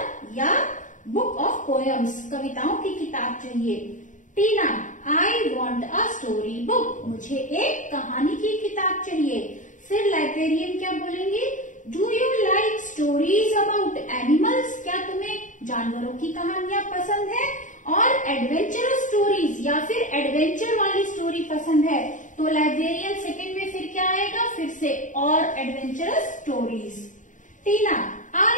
या book of poems, कविताओं की किताब चाहिए। टीना I want a story book, मुझे एक कहानी की किताब चाहिए। फिर लाइब्रेरियन क्या बोलेंगे? Do you like stories about animals? क्या तुम्हें जानवरों की कहानियां पसंद है? और एडवेंचरस स्टोरीज या फिर एडवेंचर वाली स्टोरी पसंद है? तो लाइब्रेरियन सेकंड में फिर क्या आएगा? फिर से और adventurous stories. Tina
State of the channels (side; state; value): right; late; 0.37 ms